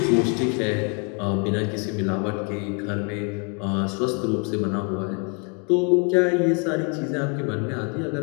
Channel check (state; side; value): quieter; right; 36.2 dB